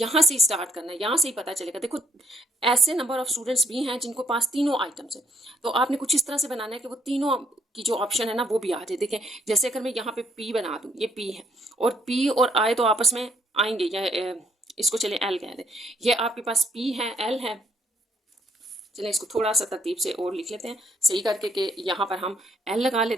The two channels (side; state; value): both; normal; correlation 0.68